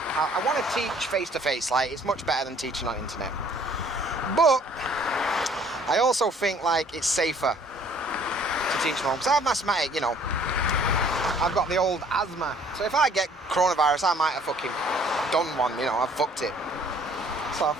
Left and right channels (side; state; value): both; normal; correlation 0.57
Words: I want to teach face-to-face, like, it's much better than teaching on internet. But I also think, like, it's safer to teach from home. Because I have mathematics, you know, I've got the old asthma. So if I get coronavirus, I might have fucking done one, you know, I've fucked it. So I